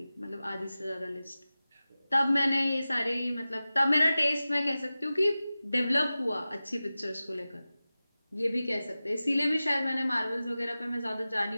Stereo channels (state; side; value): inverted; both; correlation -0.96